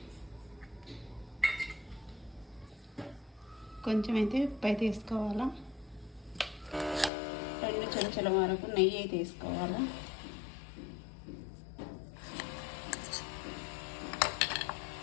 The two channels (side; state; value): right; drops out; at 7.1 s